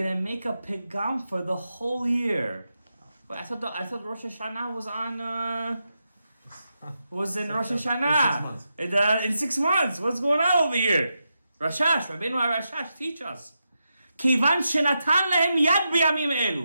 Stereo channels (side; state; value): both; inverted; correlation -0.87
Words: to make a pegam for the whole year. But I thought Rosh Hashanah was on... was in Rosh Hashanah. In 6 months. What's going on over here? Rashash, Rabbeinu Rashash, teach us. Kivan shenatan lehem yad b'yamim